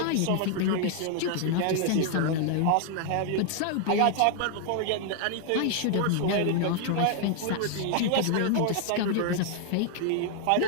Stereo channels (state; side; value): different; both; correlation 0.00